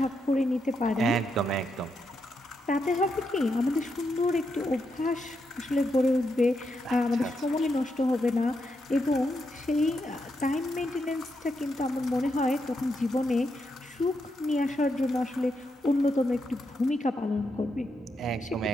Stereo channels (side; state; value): both; normal; correlation 0.82